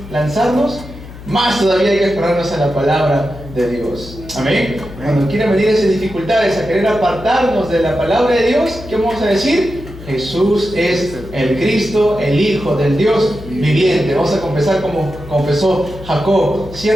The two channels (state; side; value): noise; left; hum, 15 dB below the sound